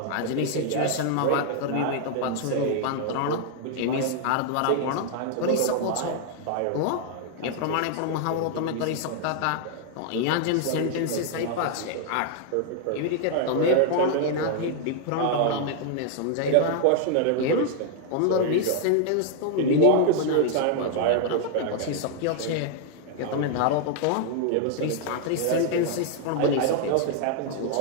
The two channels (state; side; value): different; both; correlation 0.00